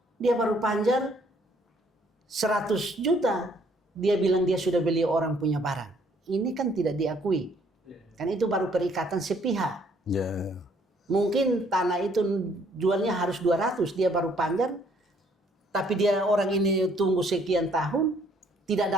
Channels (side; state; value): both; normal; correlation 0.64